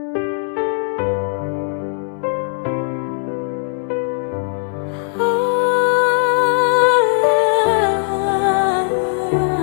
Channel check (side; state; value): right; silent; 66 dB below the other